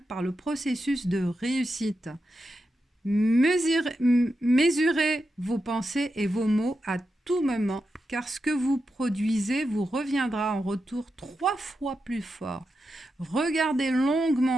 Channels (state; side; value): normal; both; correlation 0.88